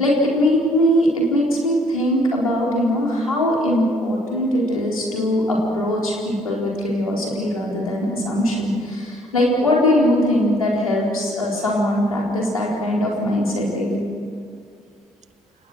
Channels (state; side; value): normal; both; correlation 0.62